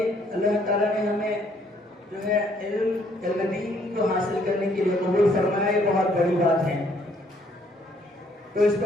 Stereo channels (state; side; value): normal; both; correlation 0.66